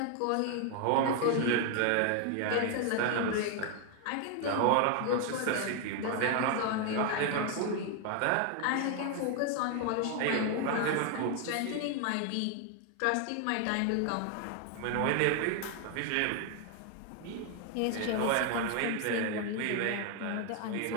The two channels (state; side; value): different; both; correlation 0.01